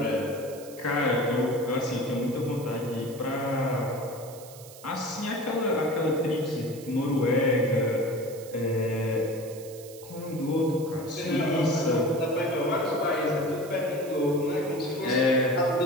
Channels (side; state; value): right; noise; hiss, 18 dB below the sound